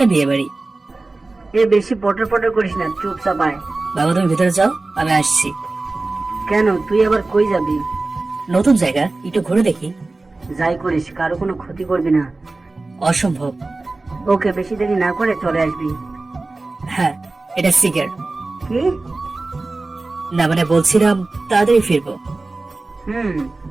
না বিয়ে বাড়ি। এ বেশি পটর পটর করিস না, চুপচাপ আয়। বাবা তুমি ভিতরে যাও, আমি আসছি। কেন, তুই আবার কই যাবি? নতুন জায়গা, একটু ঘুরে দেখি। যাই করিস, কারো কোনো ক্ষতি করবি না। অসম্ভব। ওকে, বেশি দেরি না করে চলে আসবি। হ্যাঁ, এটা সিগারেট। কি? না মানে বলছিলাম তাড়াতাড়ি ফিরবো। হুম।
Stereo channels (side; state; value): left; quieter; 3.3 dB